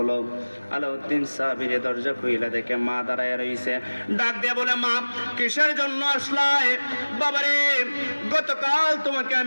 আলাউদ্দিন সাবিরে দরজা খুইলা দেখে মা দাঁড়ায় রইছে। ডাক দিয়ে বলে, মা কিসের জন্য আসলায়? বাবারে, গতকাল তোমাকে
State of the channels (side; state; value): both; inverted; correlation -1.00